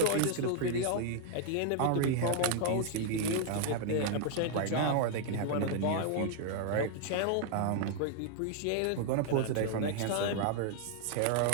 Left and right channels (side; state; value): both; different; correlation 0.00